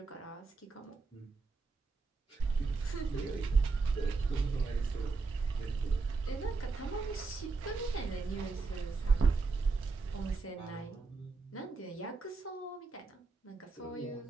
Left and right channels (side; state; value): left; quieter; 4.2 dB